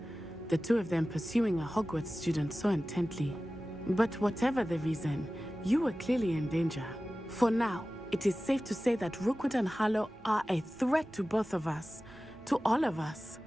The two of them pursuing a Hogwarts student so intently. But whatever the reason, you were clearly in danger. For now, it is safe to say that Rookwood and Harlow are a threat to both of us. To all of us.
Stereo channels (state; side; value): normal; both; correlation 0.96